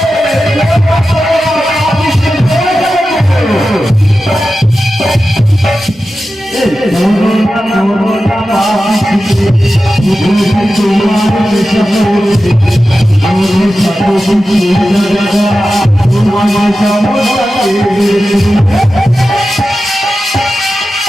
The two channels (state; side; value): normal; both; correlation 0.93